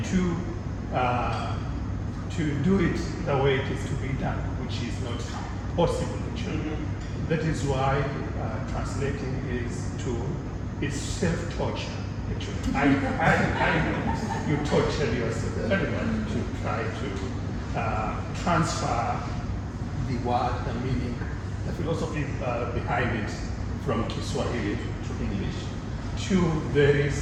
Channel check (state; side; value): identical; both; correlation 1.00